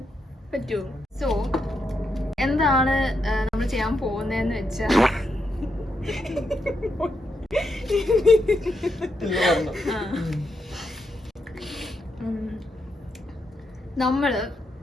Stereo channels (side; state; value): both; normal; correlation 0.82